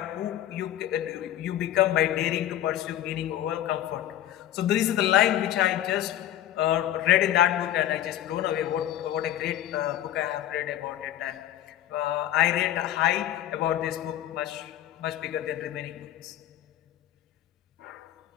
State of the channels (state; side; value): quieter; right; 12.6 dB